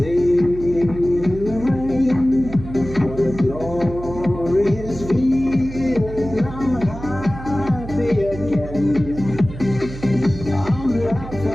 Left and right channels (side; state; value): right; noise; hum, 12 dB below the sound